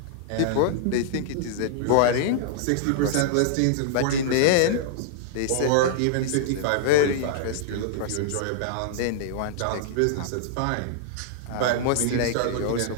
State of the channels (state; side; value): different; both; correlation -0.01